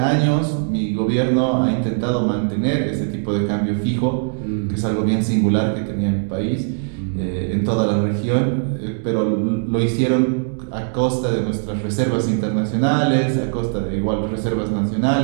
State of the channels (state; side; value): silent; left; digital silence